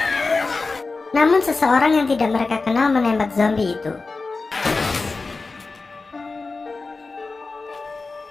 Namun seseorang yang tidak mereka kenal menembak zombie itu.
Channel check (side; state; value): right; quieter; 3.9 dB